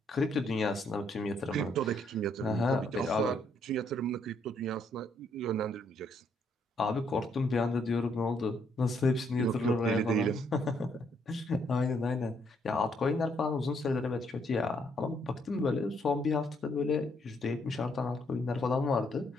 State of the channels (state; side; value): normal; both; correlation 0.71